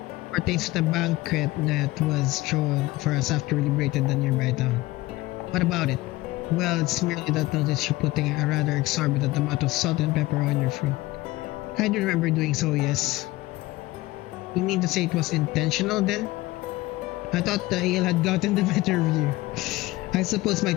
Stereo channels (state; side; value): quieter; right; 18.8 dB